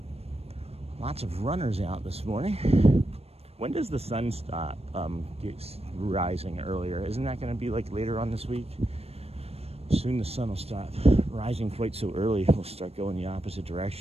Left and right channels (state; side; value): late; left; 0.29 ms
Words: Lots of runners out this morning. When does the sun stop rising earlier? Isn't that going to be like later on this week? Soon the sun will stop rising quite so early. We'll start going the opposite